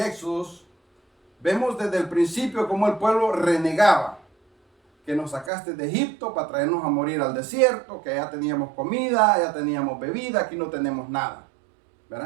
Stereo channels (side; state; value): left; drops out; at 5.5 s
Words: Éxodos, vemos desde el principio cómo el pueblo renegaba. Que nos sacaste de Egipto para traernos a morir al desierto, que ya teníamos comida, ya teníamos bebida, aquí no tenemos nada,